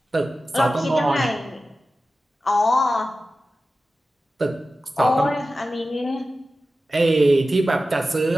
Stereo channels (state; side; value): normal; both; correlation 0.94